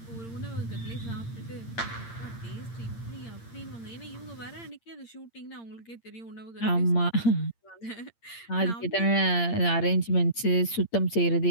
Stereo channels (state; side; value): late; right; 8.7 ms